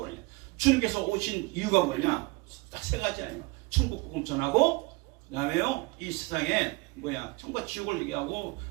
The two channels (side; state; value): left; quieter; 24.8 dB